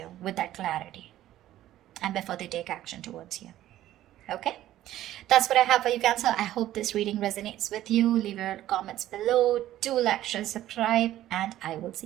with that clarity and before they take action towards you, okay? That's what I have for you, Cancer. I hope this reading resonates with you. Leave your comments below. Do like, share, subscribe, and I will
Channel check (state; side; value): quieter; left; 13.6 dB